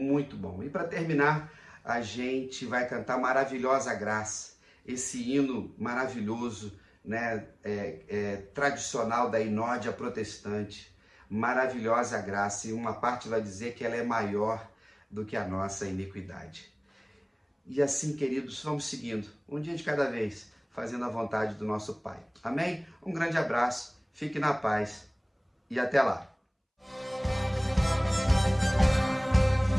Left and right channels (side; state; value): both; identical; correlation 1.00